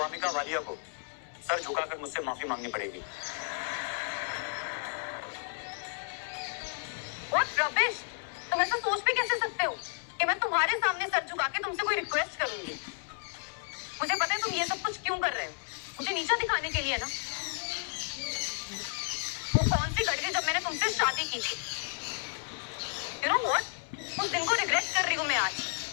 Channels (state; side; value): silent; right; digital silence